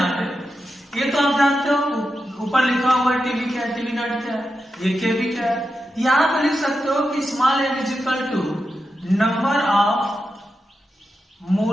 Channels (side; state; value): both; normal; correlation 0.89